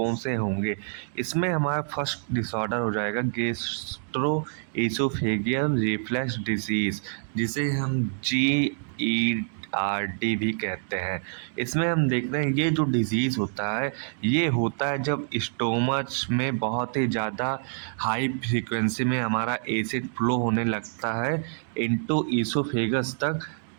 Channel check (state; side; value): silent; left; 60 dB below the other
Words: से होंगे। इसमें हमारा फर्स्ट डिसऑर्डर हो जाएगा गैस्ट्रो एसोफेगियल रिफ्लक्स डिजीज़, जिसे हम GERD भी कहते हैं। इसमें हम देख रहे हैं ये जो डिज़ीज़ होता है ये होता है जब स्टोमच में बहुत ही ज़्यादा हाई फ्रीक्वेंसी में हमारा एसिड फ्लो होने लगता है इनटू ईसोफेगस तक।